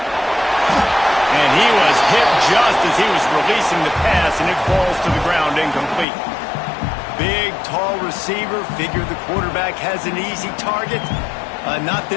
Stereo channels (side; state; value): right; drops out; at 6.1 s